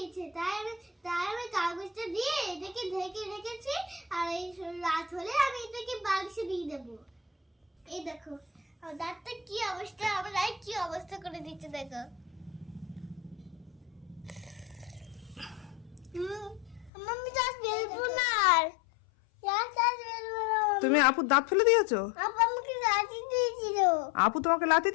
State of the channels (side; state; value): right; drops out; at 16.9 s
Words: তাই আমি কাগজটা দিয়ে এটাকে ঢেকে রেখেছি। আর এই রাত হলে আমি এটাকে বাক্সে দিয়ে দেবো। এই দেখো আমার দাঁতটা কি অবস্থা, আমার রায় কি অবস্থা করে দিচ্ছে দেখো। মাম্মি দাঁত বেরবো না আর। তুমি আপুর দাঁত ফেলে দিয়েছো? আপু আমাকে লাথি দিয়েছিল। আপু তোমাকে লাথি